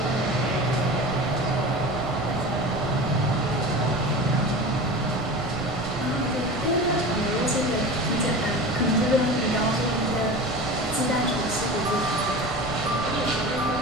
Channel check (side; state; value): right; noise; rumble, 12 dB below the sound